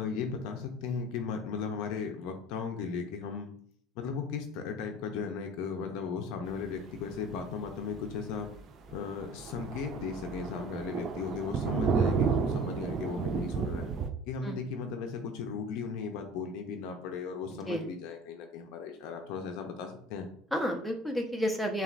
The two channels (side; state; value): both; normal; correlation 0.44